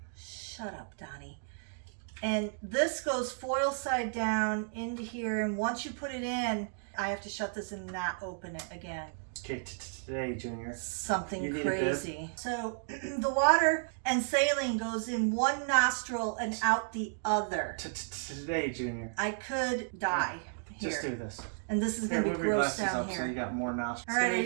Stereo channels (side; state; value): left; silent; digital silence